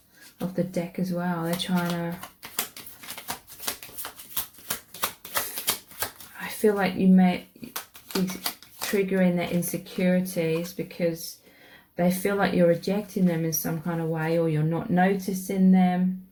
of the deck as well. They're trying to, I feel like you may be triggering their insecurities because they feel like you're rejecting them in some kind of way, or you're not noticing them,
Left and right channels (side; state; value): both; identical; correlation 1.00